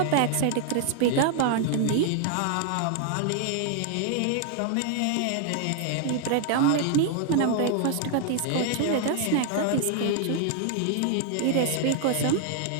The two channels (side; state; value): both; different; correlation 0.00